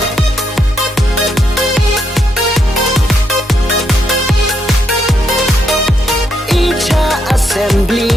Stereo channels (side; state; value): both; normal; correlation 0.78